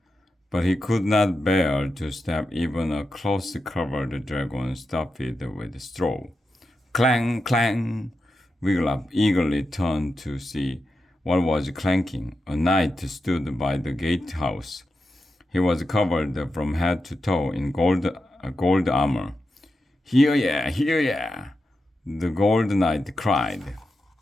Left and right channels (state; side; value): normal; both; correlation 0.89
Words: but he could not bear to stab even a close-covered dragon stuffed with straw. Clang, clang! Wiglaf eagerly turned to see what was clanking. A knight stood by the gatehouse. He was covered from head to toe in gold armor. Hear ya! Hear ya! The gold knight cried.